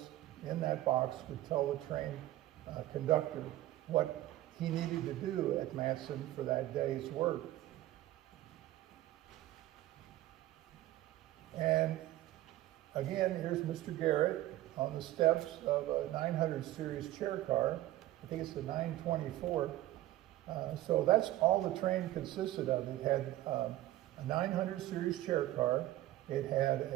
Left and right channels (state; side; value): quieter; left; 15.3 dB